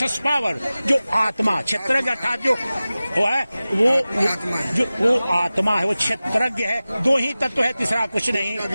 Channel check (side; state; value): both; inverted; correlation -0.96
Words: power, जो आत्मा, क्षेत्रज्ञ अर्थात जो वो है वो आत्मा है, वो क्षेत्रज्ञ है। दो ही तत्व है, तीसरा कुछ नहीं।